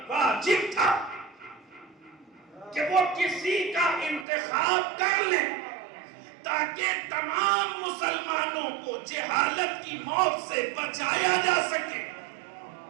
واجب تھا کہ وہ کسی کا انتخاب کر لیں تاکہ تمام مسلمانوں کو جہالت کی موت سے بچایا جا سکے۔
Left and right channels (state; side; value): drops out; left; at 4.2 s